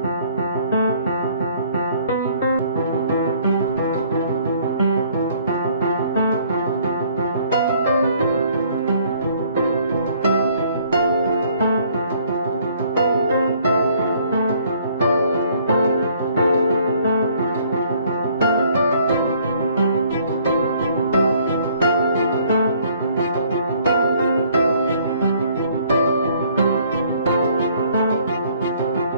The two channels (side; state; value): both; inverted; correlation -0.61